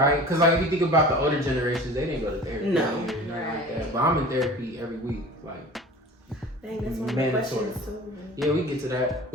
Because like if you think about the older generations, they didn't go to therapy. No. Nothing like that. But I'm in therapy every week, like. Dang, that's one of the questions too. Yeah, we get to that.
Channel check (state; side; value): normal; both; correlation 0.40